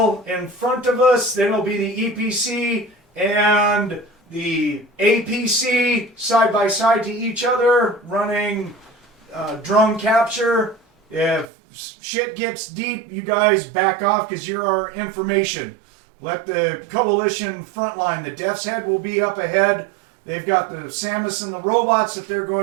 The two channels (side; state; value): left; drops out; at 11.5 s